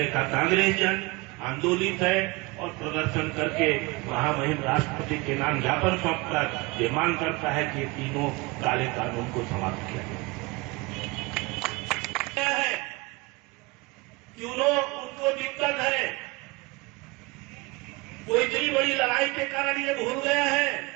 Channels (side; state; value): left; quieter; 24.9 dB